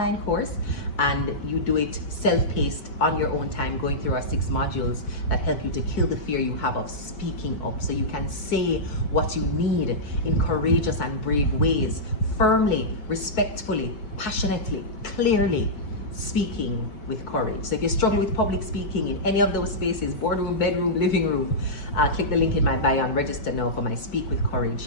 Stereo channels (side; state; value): right; late; 4.6 ms